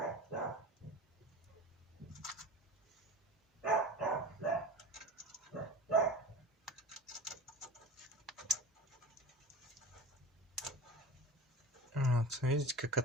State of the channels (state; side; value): normal; both; correlation 0.34